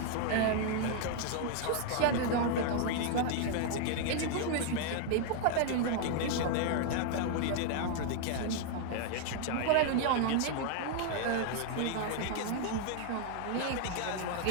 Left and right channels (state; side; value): different; both; correlation 0.00